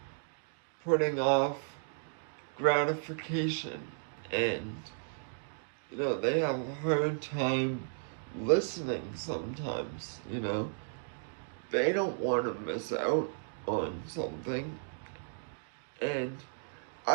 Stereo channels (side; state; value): left; silent; digital silence